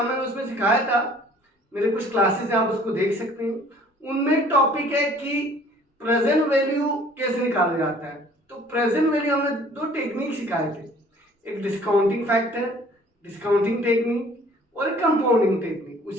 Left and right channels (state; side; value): normal; both; correlation 0.54